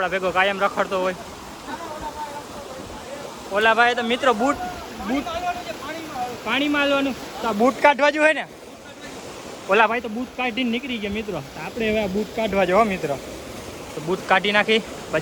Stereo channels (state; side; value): identical; both; correlation 1.00